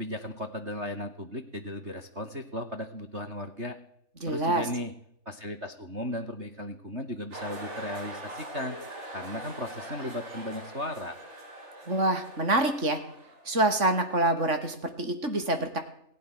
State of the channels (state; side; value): late; left; 3.6 ms